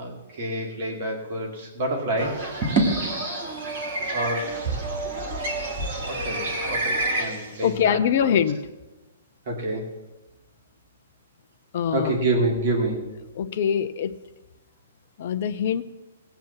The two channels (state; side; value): inverted; both; correlation -0.37